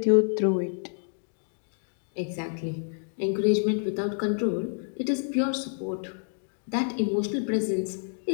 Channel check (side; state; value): right; silent; 59 dB below the other